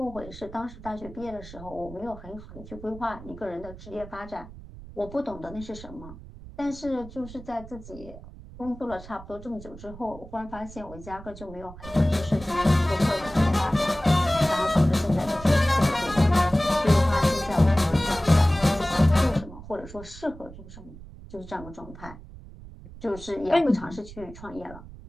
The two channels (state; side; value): noise; right; rumble, 16 dB below the sound